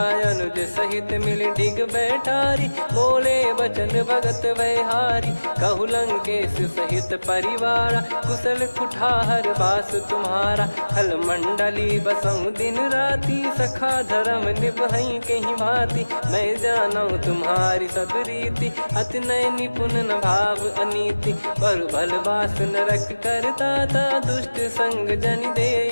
अनुज सहित मिल डिग बैठारी। बोले बचन भगत वैहारी, कहु लंकेश सहित परिवारा। कुशल कुठार बास तुम्हारा, खल मंडली बसऊं दिन राती। सखा धर्म निभई कहीं भांति, मैं जानू तुम्हारी सब रीति। अति नय निपुण न भाव अनीति, पर भल बास नरक करता था। दुष्ट संग जन दे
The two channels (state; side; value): inverted; both; correlation -1.00